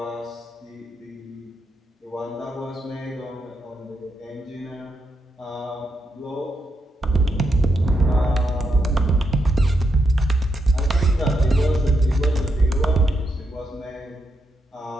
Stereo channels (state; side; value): normal; both; correlation 0.82